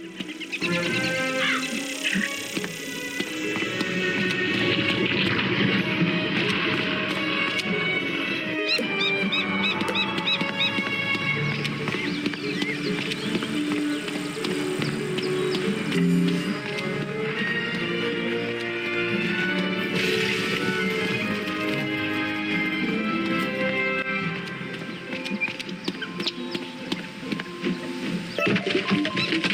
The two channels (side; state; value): both; identical; correlation 1.00